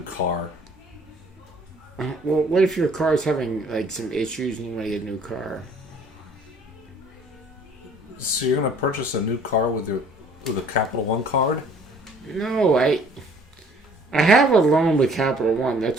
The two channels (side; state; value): both; normal; correlation 0.56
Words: car. Well, what if your car's having like some issues and you want to get a new car? So you're gonna purchase a new car with a Capital One card? No, I have a loan with Capital One.